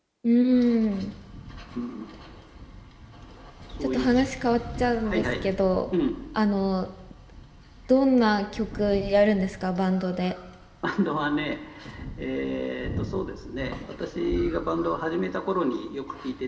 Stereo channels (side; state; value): both; identical; correlation 1.00